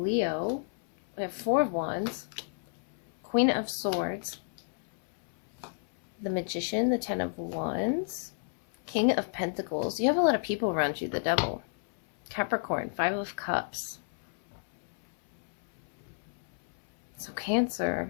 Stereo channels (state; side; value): silent; right; 57 dB below the other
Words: We have Four of Wands, Queen of Swords, the Magician, the Ten of Wands, King of Pentacles. You have a lot of people around you, the Devil. Capricorn, Five of Cups. So Cancer,